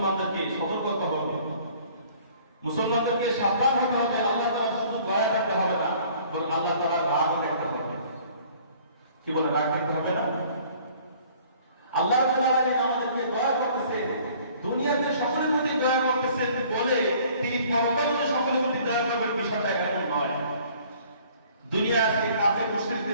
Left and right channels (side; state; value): both; inverted; correlation -0.55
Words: সতর্ক হতে হবে, মুসলমানদেরকে সাবধান হতে হবে। আল্লাহ তাআলা শুধু দয়া করতে হবে না, বরং আল্লাহ তাআলা রাগও দেখতে হবে। কি বলে, রাগ দেখতে হবে না? আল্লাহ রাব্বুল আলামিন আমাদেরকে দয়া করতেছে, দুনিয়াতে সকলের প্রতি দয়া করতেছেন বলে তিনি পরকালে সকলের প্রতি দয়া করবেন, বিষয়টা এমন নয়। দুনিয়া আজকে কাফের